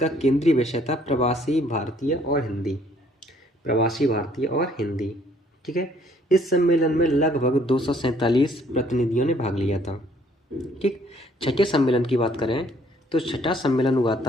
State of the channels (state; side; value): normal; both; correlation 0.62